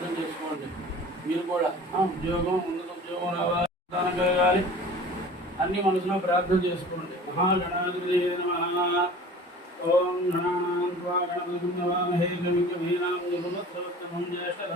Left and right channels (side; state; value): both; normal; correlation 0.42